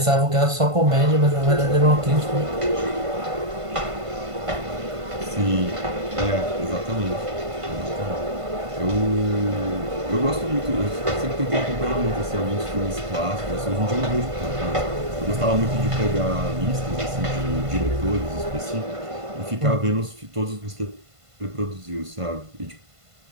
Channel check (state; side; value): late; left; 1.5 ms